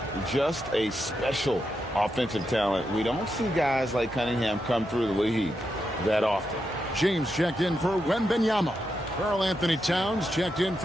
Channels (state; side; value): normal; both; correlation 0.85